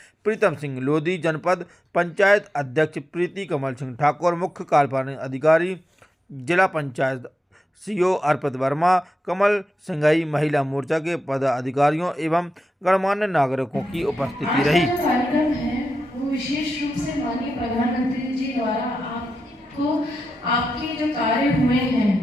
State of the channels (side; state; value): both; normal; correlation 0.89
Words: प्रीतम सिंह लोधी, जनपद पंचायत अध्यक्ष प्रीति कमल सिंह ठाकुर, मुख्य कार्यपालन अधिकारी जिला पंचायत सीओ अर्पित वर्मा, कमल सिंघई, महिला मोर्चा के पदाधिकारियों एवं गणमान्य नागरिकों की उपस्थिति रही। आज का कार्यक्रम है वो विशेष रूप से माननीय प्रधानमंत्री जी द्वारा आपको आपके जो कार्य हुए